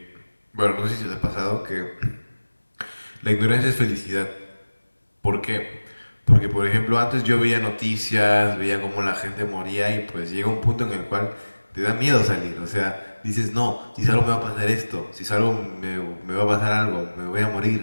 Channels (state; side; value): inverted; both; correlation -1.00